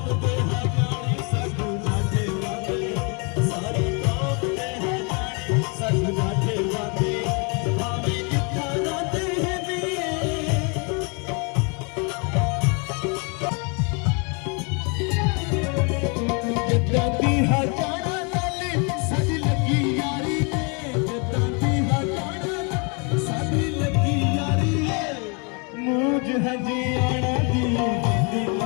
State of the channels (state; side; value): quieter; right; 34.0 dB